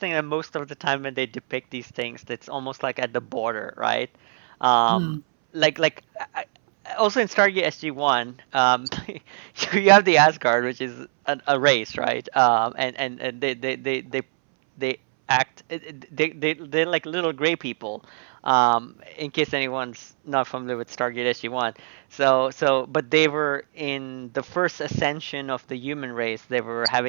that most of the time when they depict these things, it's almost like at the border, right? Um, Mm. like also in Stargate SG-1, you have the Asgard, which is a race, right? And they act they're like little gray people. In case anyone's not familiar with Stargate SG-1, but they were in the first ascension of the human race. They were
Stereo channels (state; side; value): silent; left; 63 dB below the other